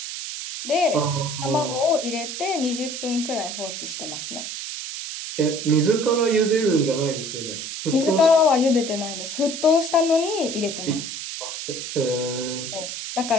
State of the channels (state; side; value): noise; right; hiss, 7 dB below the sound